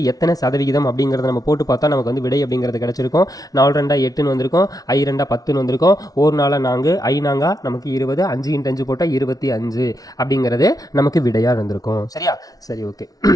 எத்தனை சதவிகிதம் அப்படிங்கிறத நம்ம போட்டு பார்த்தா நமக்கு வந்து விடை அப்படிங்கிறது கிடைச்சிருக்கும். 4 2 8ன்னு வந்திருக்கும், 5 2 10ன்னு வந்திருக்கும், 1 4 4, 5 4 நமக்கு 20, 5 × 5 போட்டால் 25 அப்படிங்கிறது நமக்கு விடையாக இருந்திருக்கும். சரியா, சரி, ஓகே.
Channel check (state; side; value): late; right; 0.18 ms